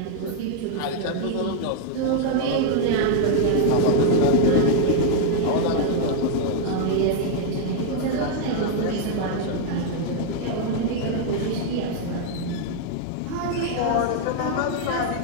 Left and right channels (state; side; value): different; both; correlation 0.00